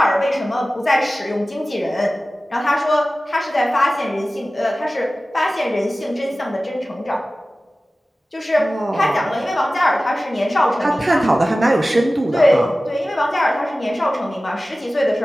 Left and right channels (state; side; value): normal; both; correlation 0.96